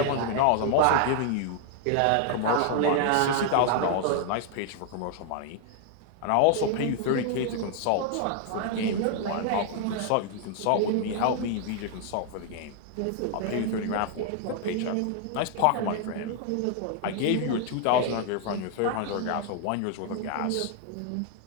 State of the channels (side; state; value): both; different; correlation 0.00